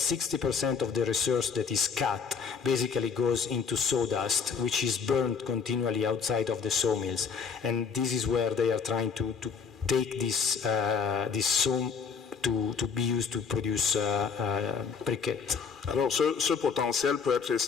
of the resource that is cut basically goes into sawdust, which is burned continually outside of the sawmills. And this is where they are trying to take this saw to be used to produce briquettes. Alors, ce potentiel peut être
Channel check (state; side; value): quieter; right; 5.9 dB